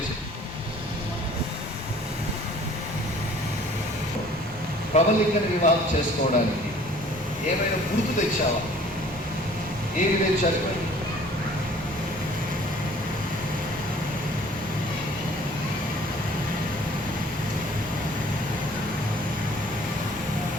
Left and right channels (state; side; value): normal; both; correlation 0.53